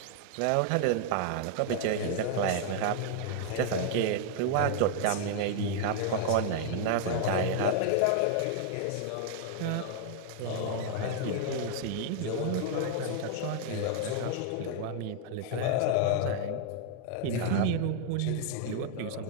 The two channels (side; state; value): both; different; correlation 0.00